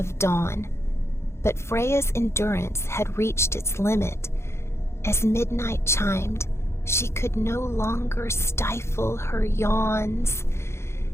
dawn. But Freya's endurance had reached its limit. As midnight chimed, she could no longer stifle her yawns,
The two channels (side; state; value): right; late; 0.13 ms